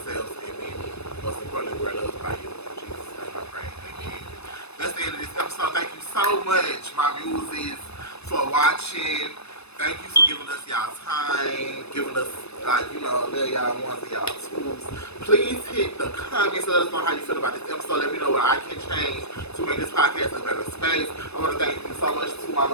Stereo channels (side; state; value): right; late; 0.79 ms